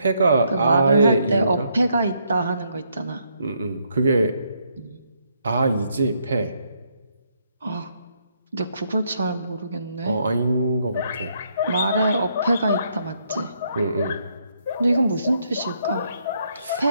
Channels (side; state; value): both; inverted; correlation -0.74